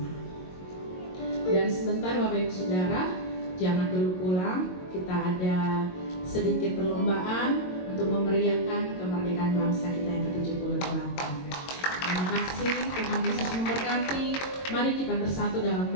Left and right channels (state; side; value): late; right; 22 ms